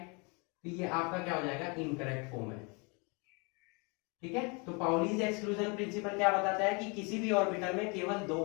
तो ये आपका क्या हो जाएगा, इनकरेक्ट फॉर्म है, ठीक है। तो पाउलीज एक्सक्लूजन प्रिंसिपल क्या बताता है कि किसी भी ऑर्बिटल में केवल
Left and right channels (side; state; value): right; quieter; 31.6 dB